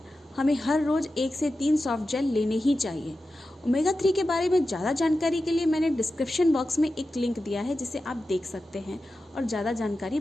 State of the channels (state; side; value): normal; both; correlation 0.92